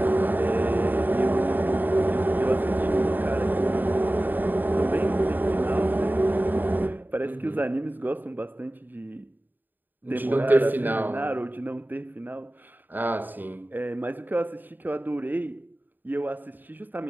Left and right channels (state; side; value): late; left; 0.090 ms